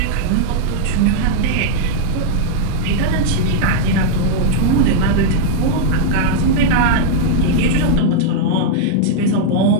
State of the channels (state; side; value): different; both; correlation 0.00